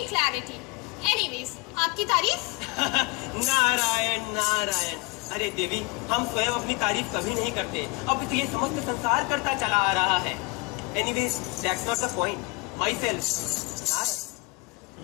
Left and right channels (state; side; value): quieter; right; 26.3 dB